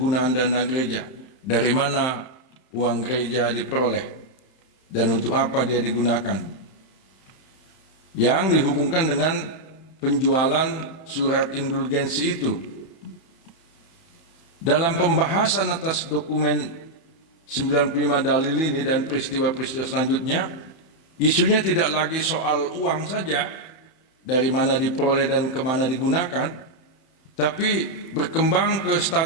dana gereja. Dari mana uang gereja diperoleh dan untuk apa dia digunakan, yang dihubungkan dengan penjualan surat indulgensi itu. Dalam pembahasan atas dokumen 95 dalil ini dan peristiwa-peristiwa selanjutnya, isunya tidak lagi soal uang saja, dari mana diperoleh dan kemana digunakan, tapi berkembang ke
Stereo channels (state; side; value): late; right; 31 ms